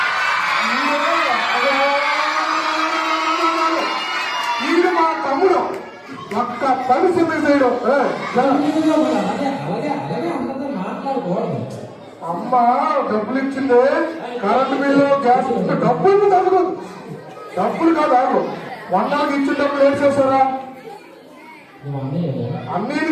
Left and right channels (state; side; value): identical; both; correlation 1.00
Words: ఈడు మా తమ్ముడు ఒక్క పని సిద్ధం అమ్మ డబ్బులు ఇచ్చింది. కరెంటు బిల్లు, గ్యాస్ డబ్బులు తగ్గదు. డబ్బులు కాదు ఆగు. వంటలకు ఇచ్చిన డబ్బులు ఏం చేస్తారా? అన్నీ